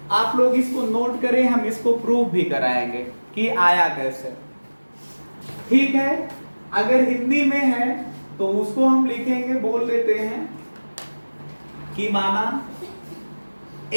आप लोग इसको नोट करें, हम इसको प्रूव भी कराएंगे कि आया कैसे। ठीक है, अगर हिंदी में है तो उसको हम लिखेंगे, बोल देते हैं कि माना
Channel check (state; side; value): inverted; both; correlation -1.00